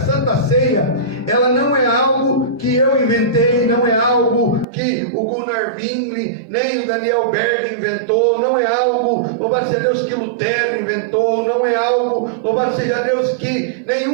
Ceia, ela não é algo que eu inventei, não é algo que o Gunnar Wingli, nem o Daniel Berg inventou, não é algo, louvado seja Deus, que Lutero inventou, não é algo, louvado seja Deus, que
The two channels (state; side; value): drops out; left; at 4.7 s